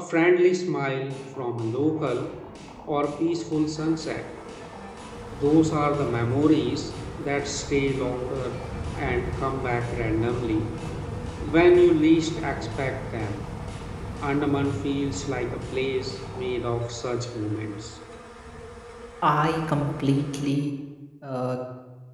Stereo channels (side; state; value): both; identical; correlation 1.00